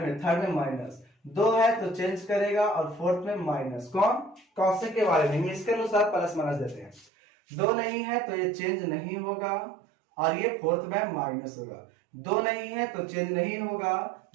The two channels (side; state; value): left; drops out; at 7.1 s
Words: में माइनस, 2 है तो चेंज करेगा, और फोर्थ में माइनस। कौन कॉसेक के बारे में इसके अनुसार प्लस माइनस देते हैं। 2 नहीं है तो ये चेंज नहीं होगा, और ये फोर्थ में माइनस होगा, 2 नहीं है तो चेंज नहीं होगा,